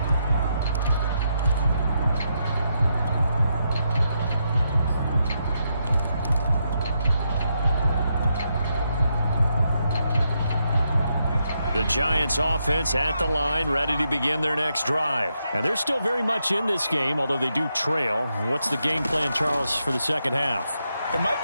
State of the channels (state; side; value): inverted; both; correlation -0.81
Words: The Giants offense at the line, ready to begin their next drive. And they're still very much in this game, although they do trail. What's the game plan, Charles, for the second half? It might